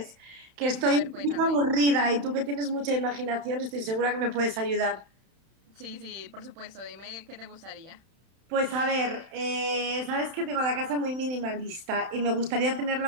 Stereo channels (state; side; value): late; left; 31 ms